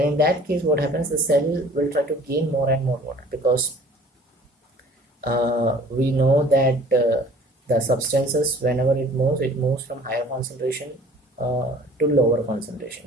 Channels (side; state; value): both; normal; correlation 0.50